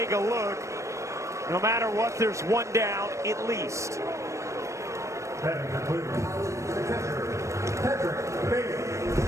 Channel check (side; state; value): left; late; 0.15 ms